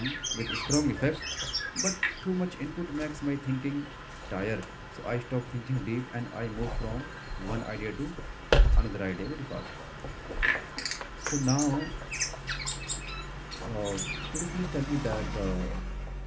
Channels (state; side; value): identical; both; correlation 1.00